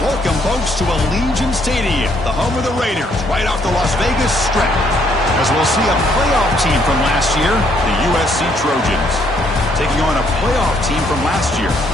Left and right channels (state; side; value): normal; both; correlation 0.69